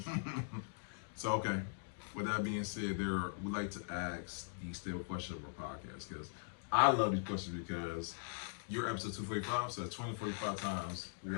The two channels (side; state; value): right; silent; digital silence